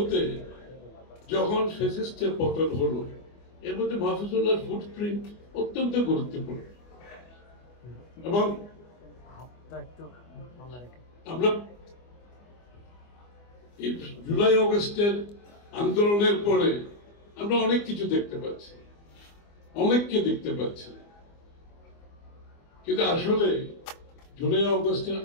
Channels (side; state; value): right; late; 24 ms